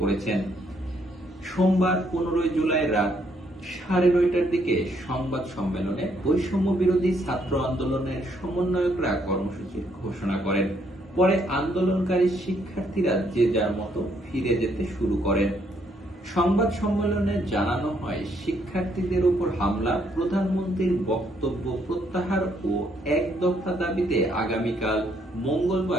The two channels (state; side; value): normal; both; correlation 0.71